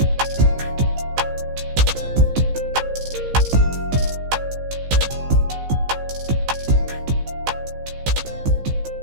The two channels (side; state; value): left; late; 15 ms